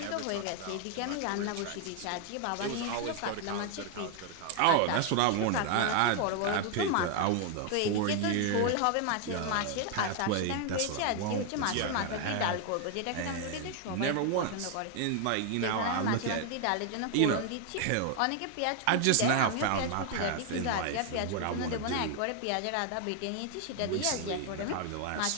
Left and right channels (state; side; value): different; both; correlation 0.00